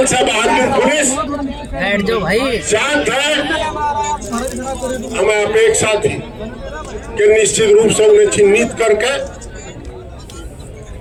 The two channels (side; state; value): both; identical; correlation 1.00